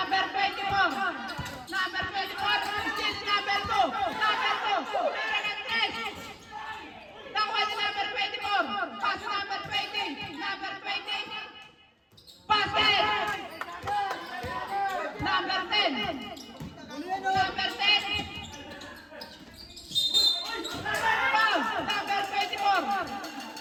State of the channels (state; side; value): identical; both; correlation 1.00